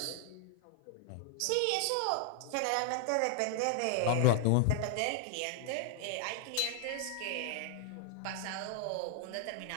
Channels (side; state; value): both; different; correlation 0.00